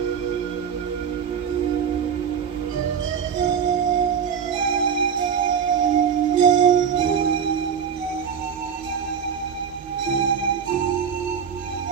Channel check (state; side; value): quieter; left; 7.3 dB